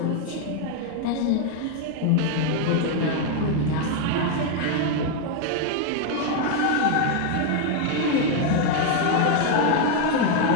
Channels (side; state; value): both; different; correlation 0.01